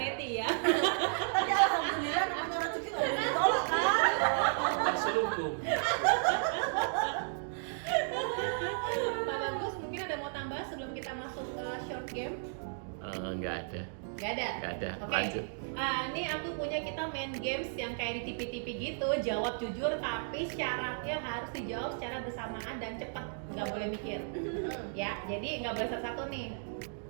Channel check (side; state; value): left; silent; digital silence